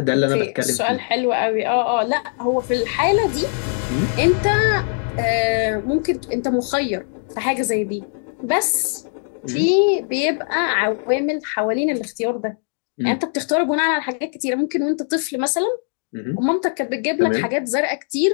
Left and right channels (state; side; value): silent; right; 56 dB below the other